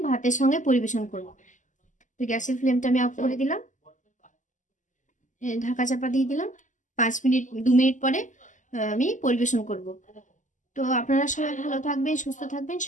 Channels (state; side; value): late; right; 0.37 ms